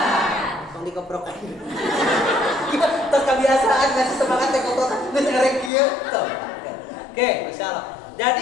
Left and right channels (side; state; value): right; drops out; at 5.7 s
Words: tong dikoprokan. Terus kebiasaan kasih semangat dikoprokan. Terus erek kieu. Oke, Masya Allah.